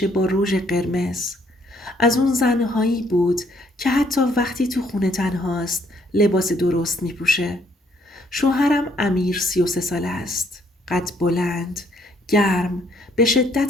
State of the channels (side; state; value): both; normal; correlation 0.67